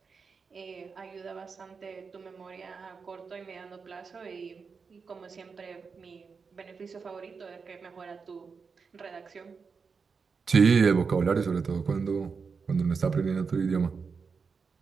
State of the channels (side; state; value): left; quieter; 5.3 dB